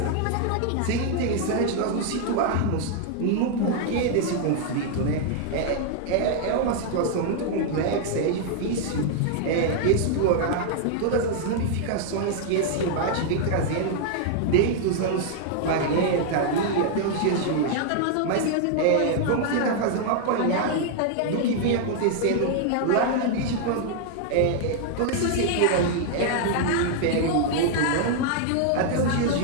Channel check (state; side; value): different; both; correlation 0.00